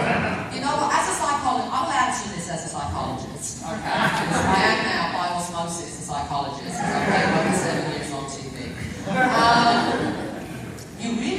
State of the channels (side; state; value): both; identical; correlation 1.00